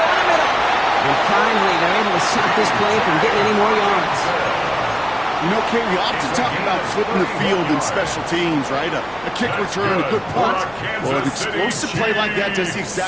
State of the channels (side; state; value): left; noise; hum, 23 dB below the sound